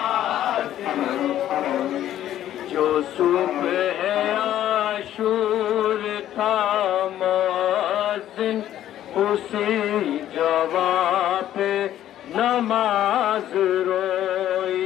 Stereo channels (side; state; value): right; quieter; 12.0 dB